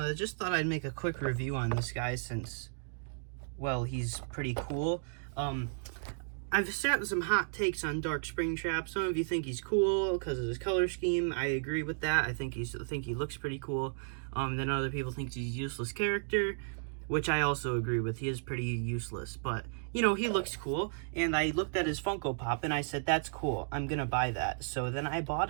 Just thought I'd make a quick review on this guy since, well, he's pretty cool. I've sat some hot takes on Dark Springtrap. Some of you think he's cool because of his color scheme. I agree with that. I think he looks pretty cool. Then other people think he's a useless character, which I also agree with. He is pretty useless, but you know, he looks cool. And I looked at his Funko Pop and I said, that's cool. I'm gonna buy that. So then I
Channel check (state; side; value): silent; left; digital silence